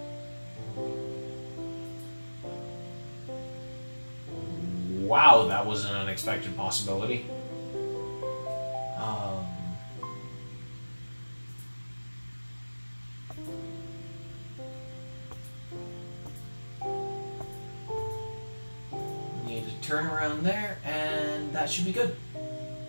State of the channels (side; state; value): both; inverted; correlation -1.00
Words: wow, that was an unexpected possibility. Need to turn around there, and that should be good.